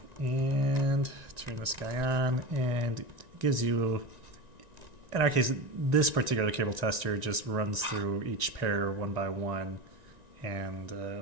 and turn this guy on, and it gives you, in our case, this particular cable tester just runs through each pair one by one, and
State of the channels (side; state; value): left; late; 1.9 ms